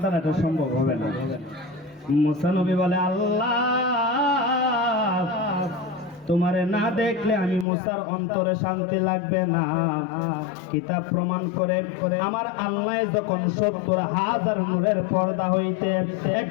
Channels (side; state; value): right; drops out; at 7.7 s